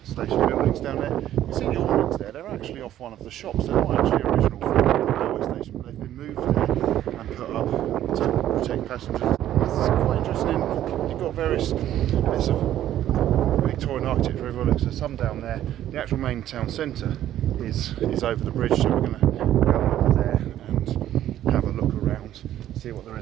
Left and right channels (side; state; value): left; quieter; 12.2 dB